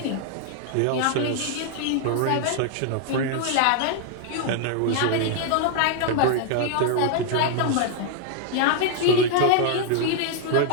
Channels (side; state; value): both; different; correlation 0.00